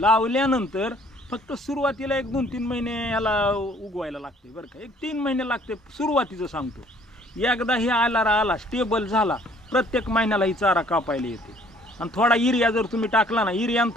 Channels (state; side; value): normal; both; correlation 0.59